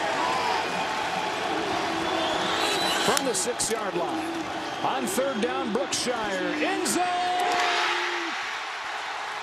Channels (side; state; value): both; identical; correlation 1.00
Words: From the 6-yard line. On 3rd down, Brookshire. End zone!